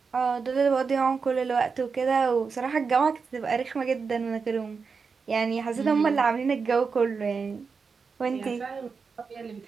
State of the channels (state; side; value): quieter; left; 5.2 dB